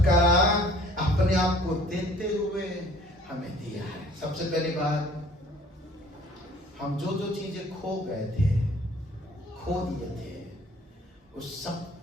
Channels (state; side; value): normal; both; correlation 0.54